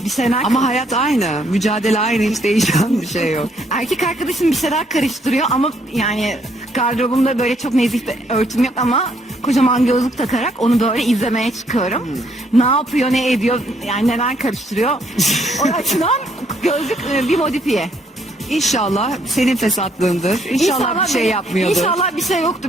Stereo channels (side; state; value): both; normal; correlation 0.69